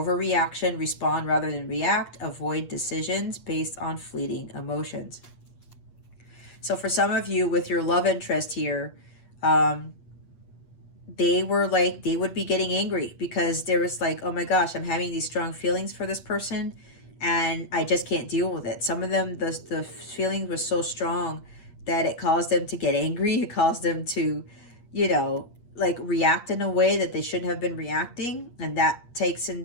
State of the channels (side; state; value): right; late; 8.5 ms